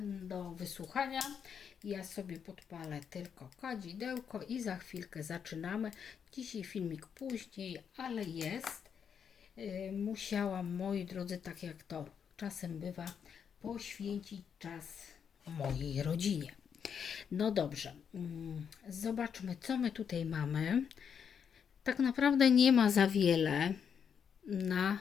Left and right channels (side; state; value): right; quieter; 7.3 dB